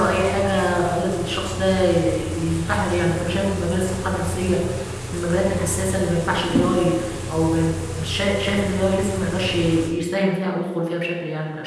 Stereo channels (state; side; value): identical; both; correlation 1.00